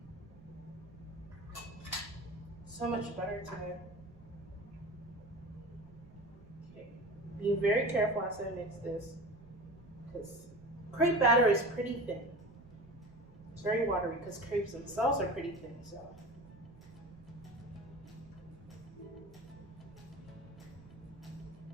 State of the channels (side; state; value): right; noise; rumble, 22 dB below the sound